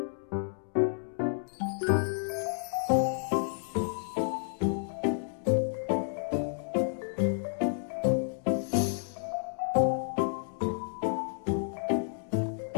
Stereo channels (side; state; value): right; silent; digital silence